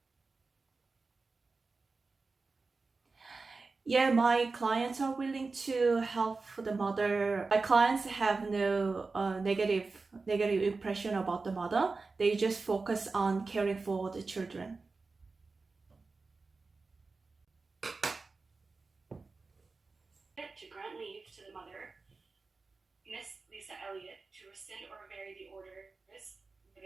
Yeah, my clients are willing to help the mother. My clients have no negative impression about the mother. They just focus on caring for the children. To grant leave to the mother, Miss Lisa Elliott, to rescind or vary the orders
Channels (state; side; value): quieter; left; 4.0 dB